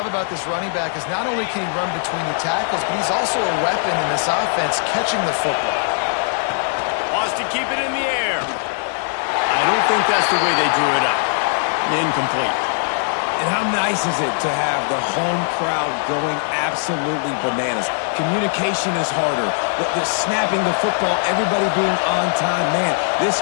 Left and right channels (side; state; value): right; silent; digital silence